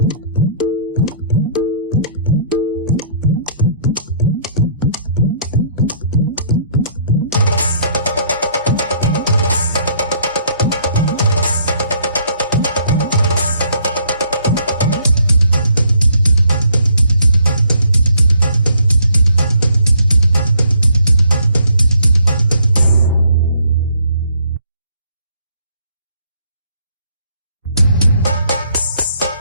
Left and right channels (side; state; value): both; inverted; correlation -0.64